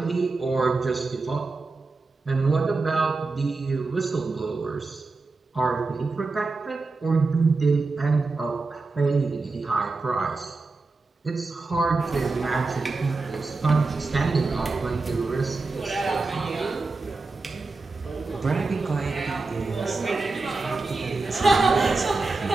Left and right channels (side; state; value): left; quieter; 3.8 dB